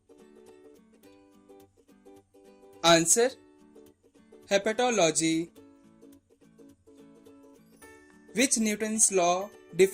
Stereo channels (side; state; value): both; identical; correlation 1.00